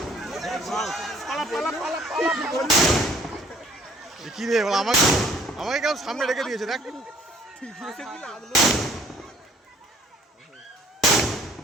কি রে আমাকে আমাকে কেমন সামনে রেখে দিয়েছে দেখ।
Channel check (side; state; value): both; normal; correlation 0.57